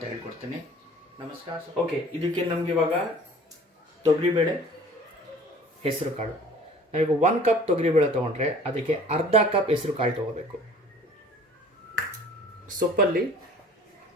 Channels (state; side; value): normal; both; correlation 0.49